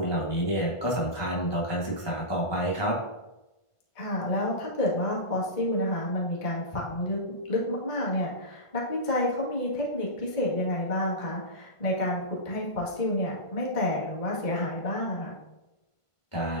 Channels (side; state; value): right; late; 1.5 ms